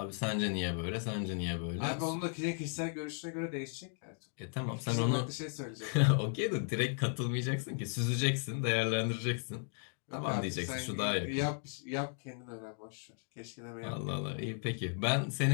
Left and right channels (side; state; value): right; silent; 54 dB below the other